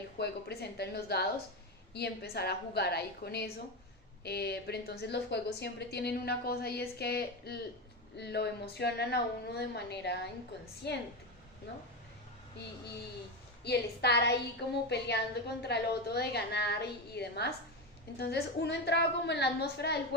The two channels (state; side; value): normal; both; correlation 0.15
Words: juego presenta en los dados y empezar a jugar ahí con eso. Pero entonces los juegos siempre tienen una cosa y es que lo emocionan a uno de manera inconsciente, ¿no? Y el estar ahí como peleando contra el otro de ganar y demás. Entonces uno entraba como en la atmósfera del